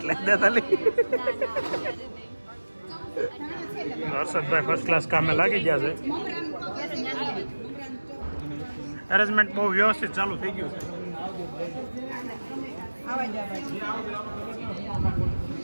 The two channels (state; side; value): inverted; both; correlation -1.00